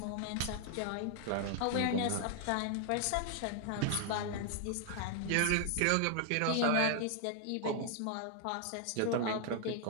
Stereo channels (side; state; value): both; different; correlation 0.00